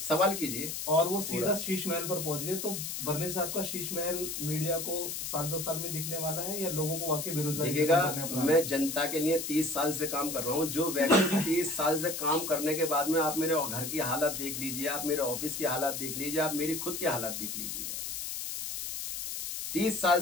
कीजिए, और वो सीधा शीश महल पर पहुंच गए। तो बर्नी साहब का शीश महल मीडिया को 7-2 साल में दिखने वाला है, या लोगों को वाकई बेरोजगारी दिखेगा? मैं जनता के लिए 30 साल से काम कर रहा हूँ। जो व्यक्ति 30 साल से काम करने के बाद में आप मेरे घर की हालत देख लीजिए, आप मेरे ऑफिस की हालत देख लीजिए, आप मेरी खुद की हालत देख लीजिएगा। 30 साल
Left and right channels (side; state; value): left; noise; hiss, 5 dB below the sound